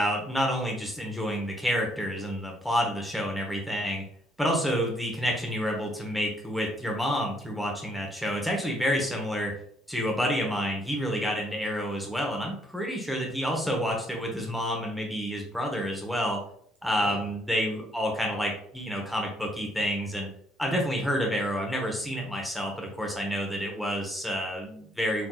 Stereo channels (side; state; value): both; normal; correlation 0.69